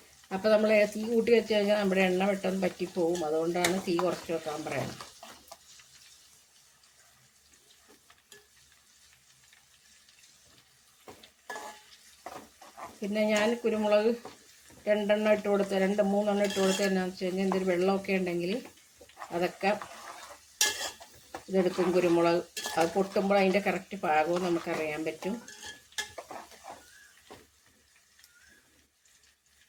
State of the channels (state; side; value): identical; both; correlation 1.00